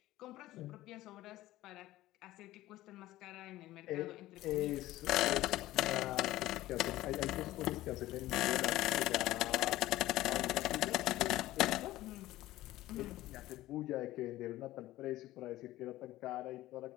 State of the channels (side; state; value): right; quieter; 16.1 dB